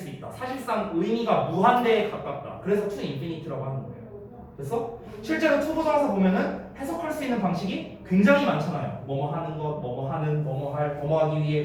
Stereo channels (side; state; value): both; identical; correlation 1.00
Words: 있다. 사실상 의미가 무한대에 가깝다. 그래서 to infinite라고 하는 거예요. 그래서 실제로 to 부정사 보면은 해석할 수 있는 방식이 굉장히 많잖아요. 뭐뭐 하는 것, 뭐뭐 하는, 뭐뭐 할, 뭐뭐 하기 위해,